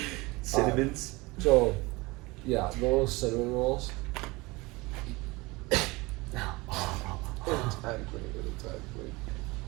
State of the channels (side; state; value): left; quieter; 23.4 dB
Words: cinnamons? So, yeah, the little cinnamon rolls. Exactly.